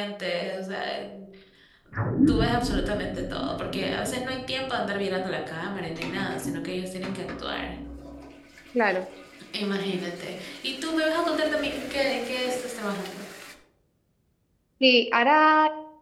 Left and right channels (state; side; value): identical; both; correlation 1.00